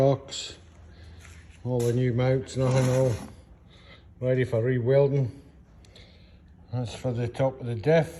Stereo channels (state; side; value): identical; both; correlation 1.00